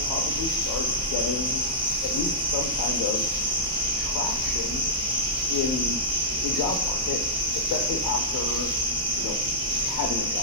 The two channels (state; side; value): normal; both; correlation -0.13